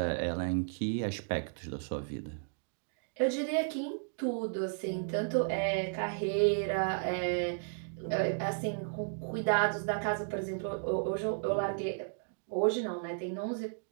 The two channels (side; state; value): left; silent; digital silence